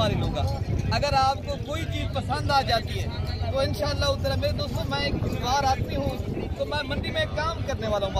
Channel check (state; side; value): identical; both; correlation 1.00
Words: लूँगा। अगर आपको कोई चीज़ पसंद आ जाती है तो इंशाअल्लाह उधर मेरे दोस्तों मैं एक बार आदमी हूँ, तो मैं मंडी में काम करने वाला हूँ